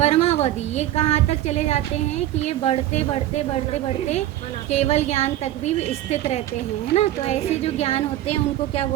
ये कहाँ तक चले जाते हैं कि ये बढ़ते बढ़ते बढ़ते बढ़ते केवल ज्ञान तक भी स्थित रहते हैं, है ना। तो ऐसे जो ज्ञान होते हैं उनको क्या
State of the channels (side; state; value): left; quieter; 13.6 dB